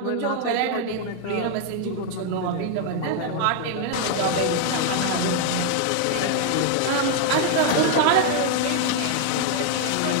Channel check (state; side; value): different; both; correlation 0.00